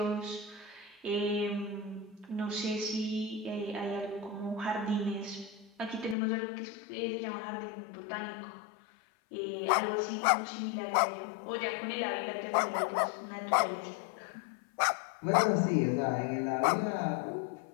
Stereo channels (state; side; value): drops out; right; at 6.2 s